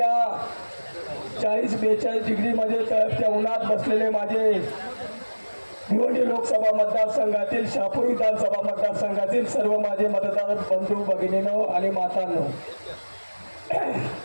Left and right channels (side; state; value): both; inverted; correlation -1.00